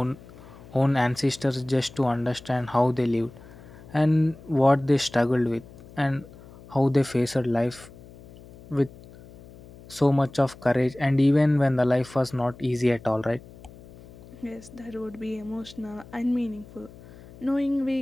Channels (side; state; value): left; noise; hum, 20 dB below the sound